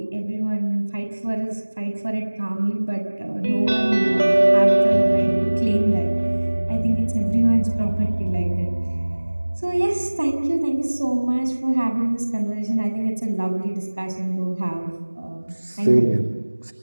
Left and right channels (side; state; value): both; inverted; correlation -1.00